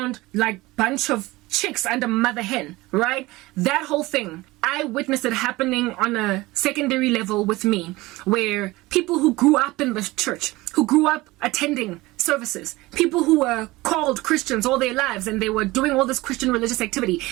bunch of chicks under mother hen, right? That whole thing, I witnessed it happening on a secondary level with me, where people who grew up in the church, who grew up attending services, people who were called Christians all their lives, and they were doing all this Christian religious activity,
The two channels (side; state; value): left; quieter; 20.3 dB